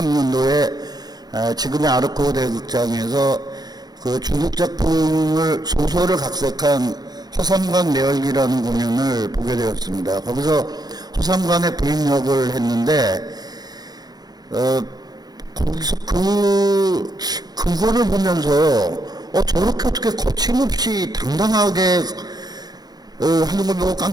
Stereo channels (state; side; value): late; left; 0.19 ms